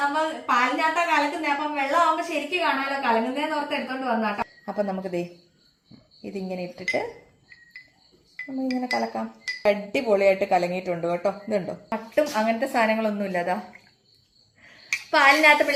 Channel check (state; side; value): identical; both; correlation 1.00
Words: അപ്പൊ പാലിനകത്താ കലക്കുന്നേ, അപ്പം വെള്ളം ആവുമ്പോ ശരിക്കും കാണാമല്ലോ കലങ്ങുന്നേന്ന് ഓർത്ത് എടുത്തോണ്ട് വന്നാട്ടോ. അപ്പൊ നമുക്ക് ഇതിങ്ങനെ ഇട്ടിട്ട് നമ്മളിങ്ങനെ കലക്കാം. അടിപൊളിയായിട്ട് കലങ്ങിയിട്ടുണ്ട് കേട്ടോ. ഇതുണ്ടോ, കട്ടും അങ്ങനത്തെ സാധനങ്ങളൊന്നും ഇല്ലതാ. പാലിനകത്ത്